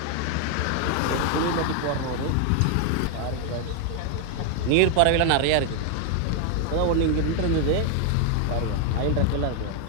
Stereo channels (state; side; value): different; both; correlation 0.00